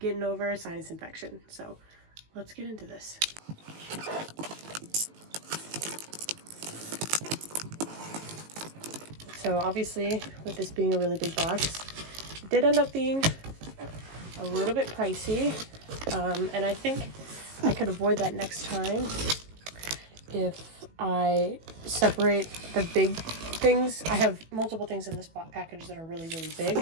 over a sinus infection. So let's get into this. So obviously, with this being a really big box, it did end up being a little bit pricey, and I think I could avoid that next time if I separate the big things. I have multiple things in this package that are really, really big,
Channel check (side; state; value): left; late; 18 ms